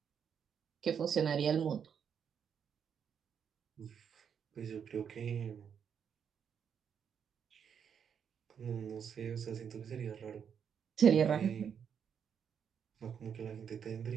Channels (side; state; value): left; quieter; 7.6 dB